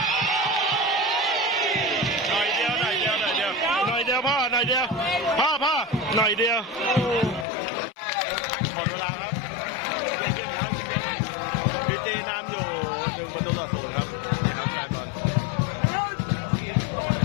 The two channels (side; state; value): right; drops out; at 7.5 s